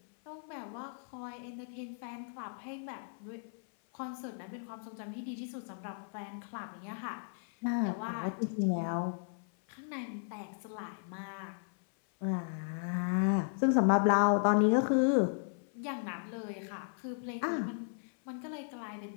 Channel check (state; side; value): silent; right; 54 dB below the other